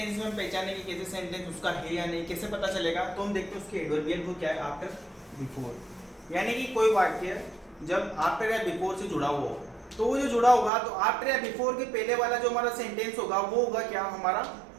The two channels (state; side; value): drops out; left; at 10.7 s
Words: में हम पहचानेंगे कैसे सेंटेंस उसका है या नहीं, कैसे पता चलेगा, तो हम देखते हैं उसके एडवर्बियल को क्या है, आफ्टर, बिफोर। यानी कि कोई वाक्य जब आफ्टर या बिफोर से जुड़ा हुआ हो, तो वो जो जुड़ा होगा तो आफ्टर या बिफोर के पहले वाला जो हमारा सेंटेंस होगा वो होगा क्या, हमारा